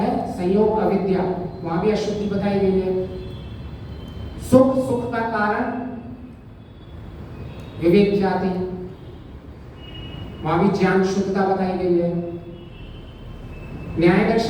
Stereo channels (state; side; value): identical; both; correlation 1.00